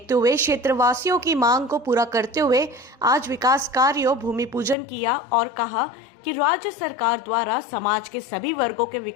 हुए क्षेत्रवासियों की मांग को पूरा करते हुए आज विकास कार्यों भूमि पूजन किया और कहा कि राज्य सरकार द्वारा समाज के सभी वर्गों के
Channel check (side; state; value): right; drops out; at 4.8 s